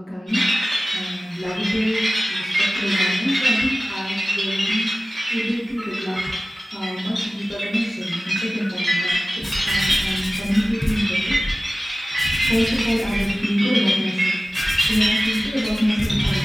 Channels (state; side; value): normal; both; correlation 0.97